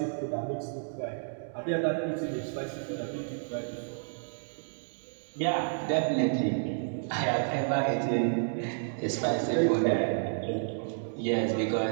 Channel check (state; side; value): silent; left; digital silence